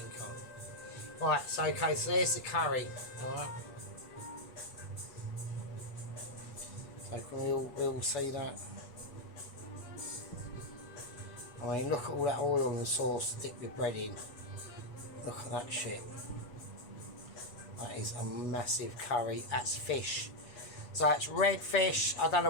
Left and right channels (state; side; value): late; right; 7.1 ms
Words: Right. So okay. So there's the curry. All right. So can we all see that? I mean, look at all that oil and sauce to dip your bread in. Look at that shit. That is a massive curry. That's fish. So that's red fish. I don't